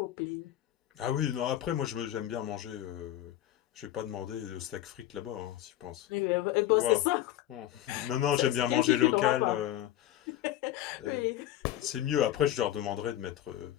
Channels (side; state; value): right; quieter; 13.1 dB